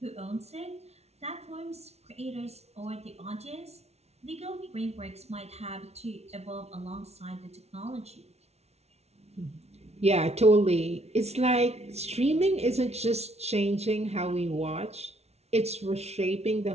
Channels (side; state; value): left; late; 0.31 ms